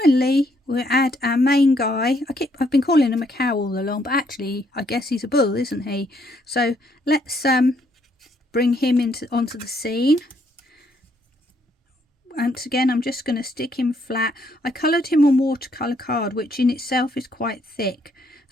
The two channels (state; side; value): normal; both; correlation 0.71